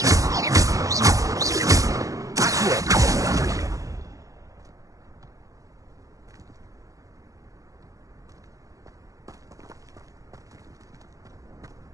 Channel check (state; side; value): late; left; 0.16 ms